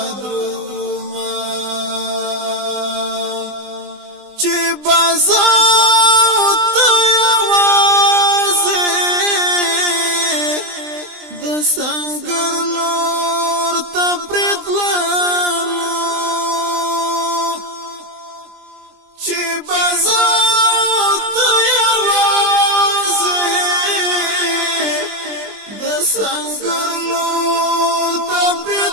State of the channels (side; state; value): left; late; 20 ms